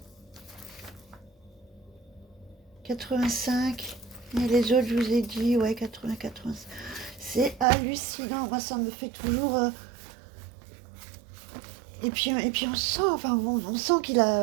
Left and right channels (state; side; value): drops out; left; at 7.7 s